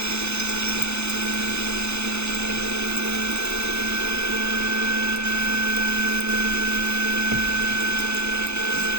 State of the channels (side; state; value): left; late; 0.81 ms